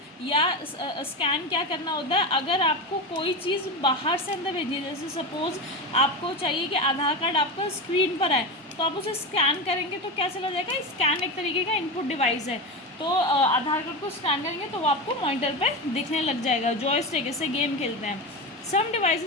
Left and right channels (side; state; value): both; normal; correlation 0.20